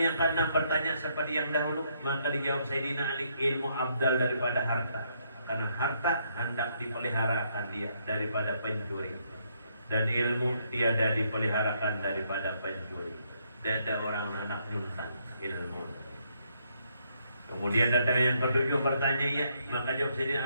yang keenam, bertanya seperti yang dahulu. Maka dijawab Sayyidina Ali, ilmu abdal daripada harta. Karena harta hendak dipeliharakan dia daripada pencuri, dan ilmu tiada dipeliharakan daripada pencuri. Tidak ada orang anak nyuntan ilmu. Kemudian datang yang ketujuh, bertanya ya. Maka jawab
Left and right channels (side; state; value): both; inverted; correlation -0.73